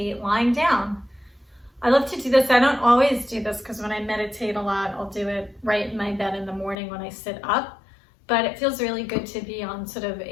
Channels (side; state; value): right; drops out; at 6.8 s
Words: lying down. I love to do this. I don't always do this because when I meditate a lot, I'll do it right in my bed in the morning when I sit up. But it feels really good to be on sort of